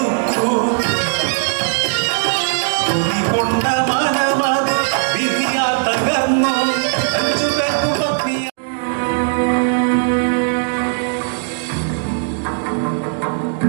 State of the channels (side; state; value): left; silent; digital silence